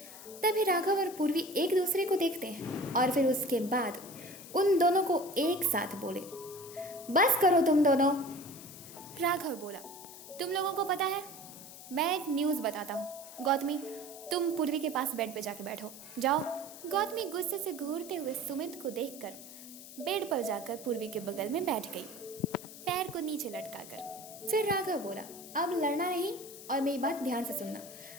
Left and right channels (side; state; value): left; noise; hiss, 15 dB below the sound